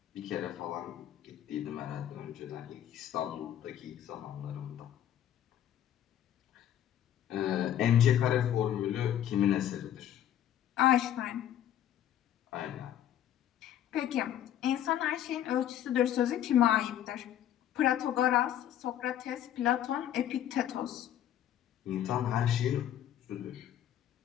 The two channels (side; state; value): right; quieter; 11.0 dB